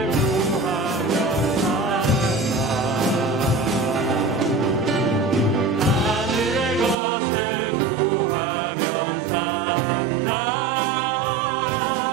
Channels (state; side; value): drops out; left; at 7.0 s